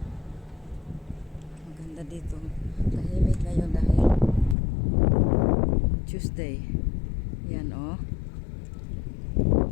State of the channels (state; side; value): drops out; right; at 4.5 s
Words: Maganda dito. Tahimik ngayon dahil Tuesday. Yan oh.